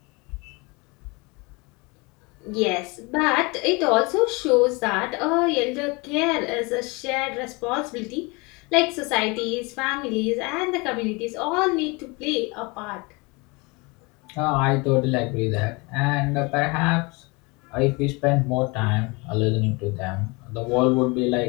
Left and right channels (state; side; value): quieter; right; 27.3 dB